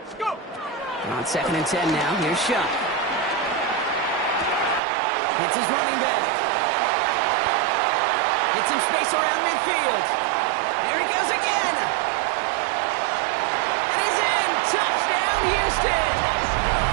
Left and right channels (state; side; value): drops out; left; at 4.8 s